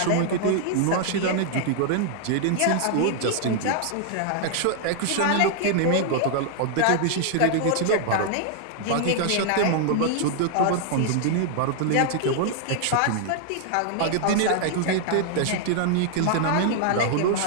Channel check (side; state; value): both; different; correlation -0.01